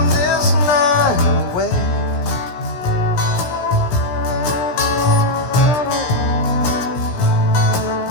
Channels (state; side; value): late; right; 17 ms